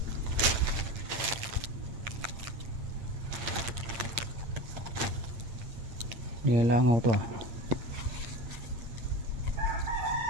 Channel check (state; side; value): late; left; 9.1 ms